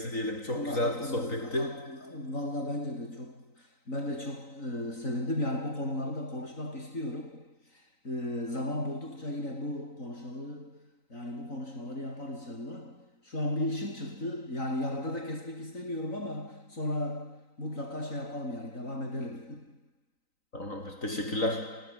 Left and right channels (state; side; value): late; right; 3.9 ms